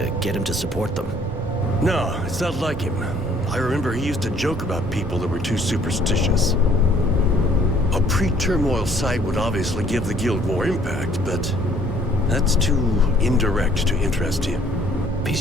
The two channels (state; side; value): normal; both; correlation 0.61